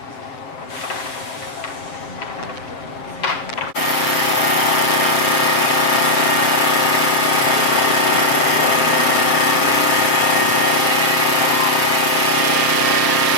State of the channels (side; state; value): right; late; 7.5 ms